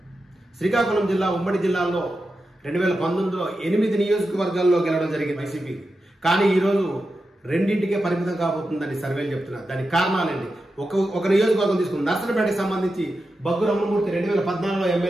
శ్రీకాకుళం జిల్లా ఉమ్మడి జిల్లాలో 2019లో 8 నియోజకవర్గాల్లో గెలవడం జరిగింది వైసీపీ. కానీ ఈరోజు రెండింటికే పరిమితం కాబోతుందని సర్వేలు చెప్తున్నారు. దానికి కారణాలేంటి? ఒక నియోజకవర్గం తీసుకుని నర్సనపేటకి సంబంధించి బగ్గు రమణమూర్తి 2014లో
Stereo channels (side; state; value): both; normal; correlation 0.90